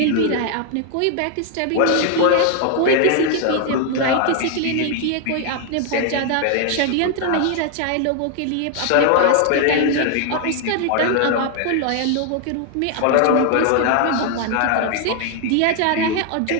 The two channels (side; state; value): both; different; correlation 0.00